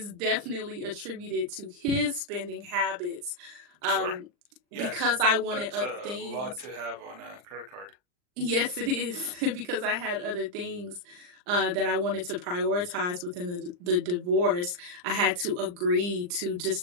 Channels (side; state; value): left; late; 39 ms